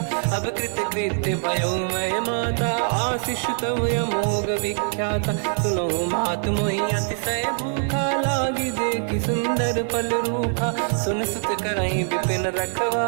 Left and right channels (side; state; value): left; silent; digital silence